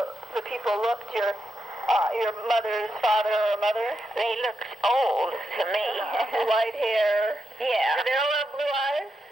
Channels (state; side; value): normal; both; correlation 0.85